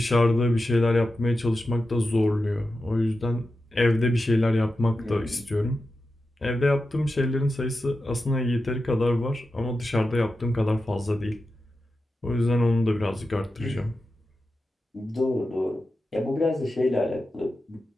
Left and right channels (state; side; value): normal; both; correlation 0.91